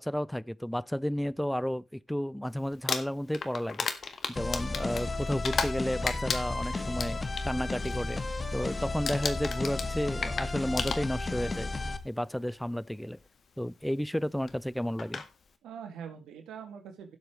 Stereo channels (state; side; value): normal; both; correlation 0.96